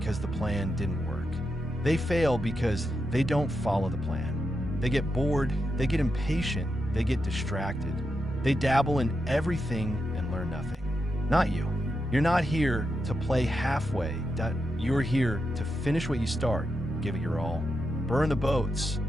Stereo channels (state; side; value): normal; both; correlation 0.86